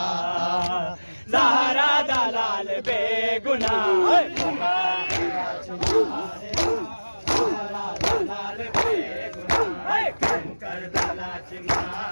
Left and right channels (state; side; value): inverted; both; correlation -1.00